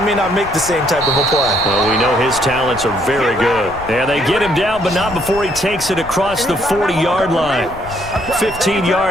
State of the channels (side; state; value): left; noise; rumble, 16 dB below the sound